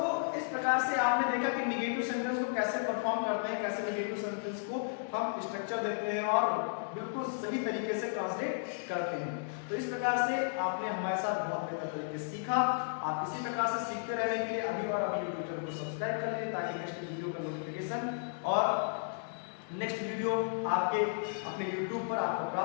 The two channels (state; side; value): silent; right; digital silence